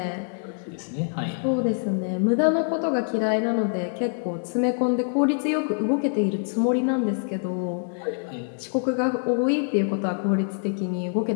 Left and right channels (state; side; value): silent; right; 62 dB below the other